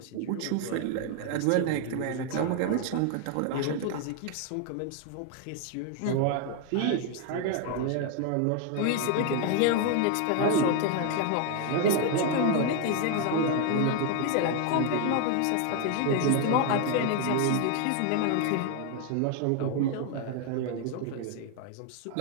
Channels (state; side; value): different; both; correlation 0.01